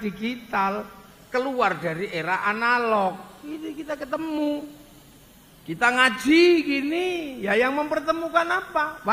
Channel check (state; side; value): identical; both; correlation 1.00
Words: keluar dari era analog. Ini kita ketemu. Kita ngaji gini, ya yang mempertemukan apa?